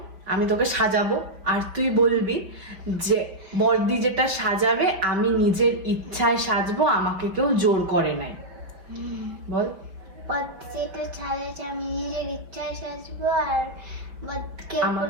আমি তোকে সাজাবো আর তুই বলবি যে বর্দি যেটা সাজাবে আমি নিজের ইচ্ছায় সাজবো, আমাকে কেউ জোর করে নাই। বল। যেটা সাজাচ্ছে আমি নিজের ইচ্ছায় সাজবো, আর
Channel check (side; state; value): left; late; 5.4 ms